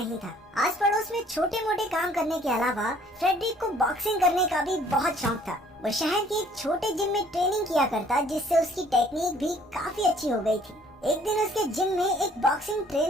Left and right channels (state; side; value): normal; both; correlation 0.59